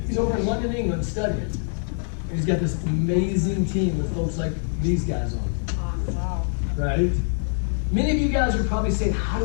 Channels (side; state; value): right; silent; digital silence